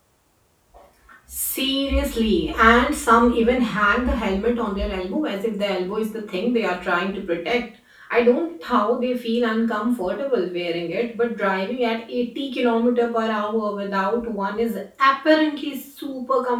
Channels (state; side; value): identical; both; correlation 1.00